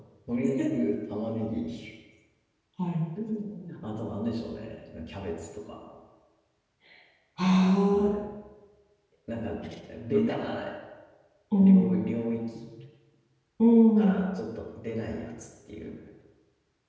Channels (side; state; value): both; identical; correlation 1.00